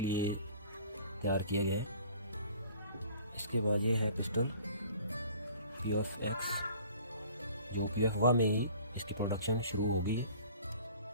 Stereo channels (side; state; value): both; inverted; correlation -0.49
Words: तैयार किया गया है। इसके बाद ये है पिस्टल POF-X, जो POF-1 में ही इसकी प्रोडक्शन शुरू होगी।